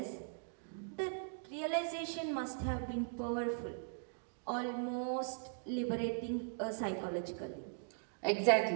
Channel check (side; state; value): left; silent; digital silence